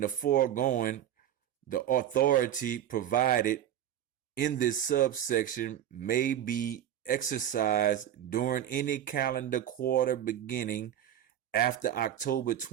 the foregoing, the authority provided in this subsection may be exercised during any calendar quarter beginning after October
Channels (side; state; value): left; quieter; 10.8 dB